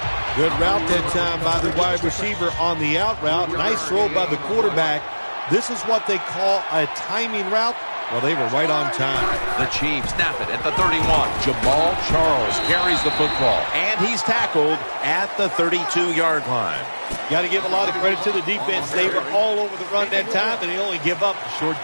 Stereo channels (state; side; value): inverted; both; correlation -1.00